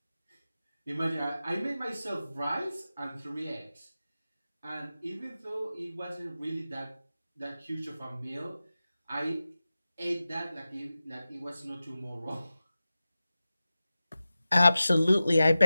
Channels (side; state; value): both; inverted; correlation -0.94